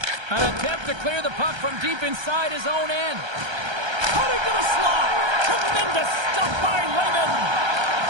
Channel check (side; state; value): left; late; 1.3 ms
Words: An attempt to clear the puck from deep inside his own end. Cutting to the slot. Tremendous stuff by Lehman.